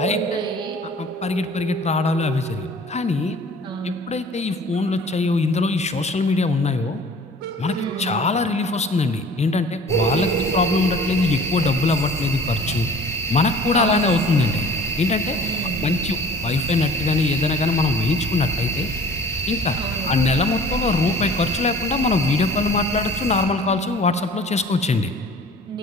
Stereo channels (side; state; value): both; normal; correlation 0.47